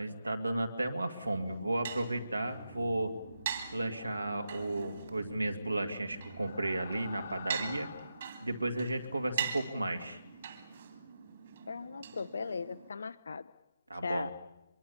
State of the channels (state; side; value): inverted; both; correlation -0.87